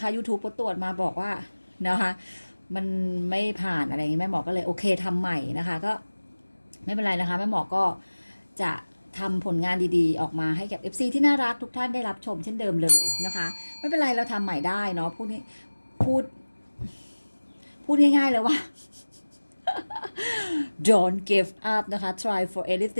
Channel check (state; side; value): inverted; both; correlation -1.00